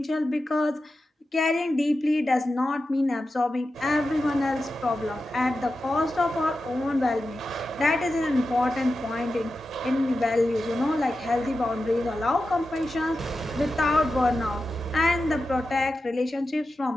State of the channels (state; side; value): normal; both; correlation 0.91